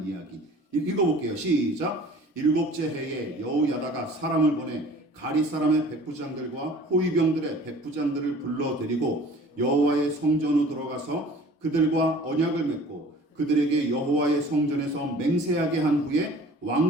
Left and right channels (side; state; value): both; normal; correlation 0.47